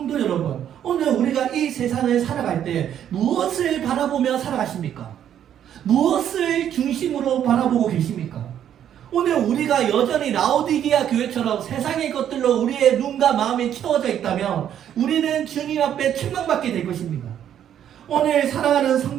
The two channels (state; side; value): quieter; left; 10.0 dB